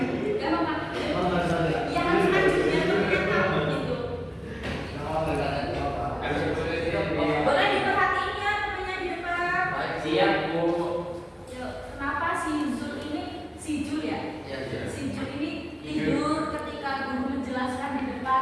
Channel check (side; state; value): both; identical; correlation 1.00